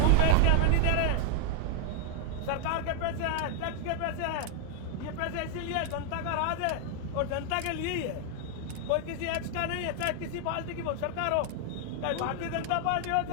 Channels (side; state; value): both; different; correlation 0.00